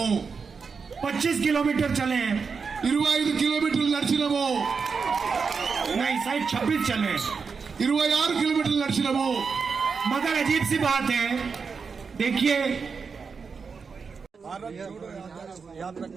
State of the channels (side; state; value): left; quieter; 5.4 dB